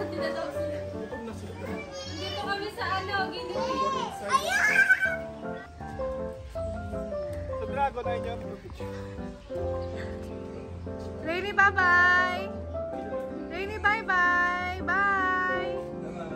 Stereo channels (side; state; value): both; identical; correlation 1.00